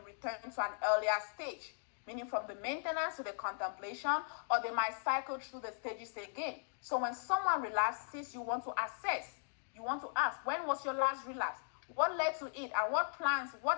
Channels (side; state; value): right; silent; digital silence